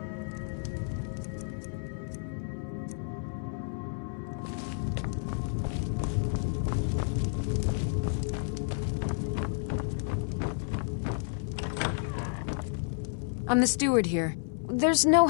I'm the steward here. There's no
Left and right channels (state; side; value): silent; right; 57 dB below the other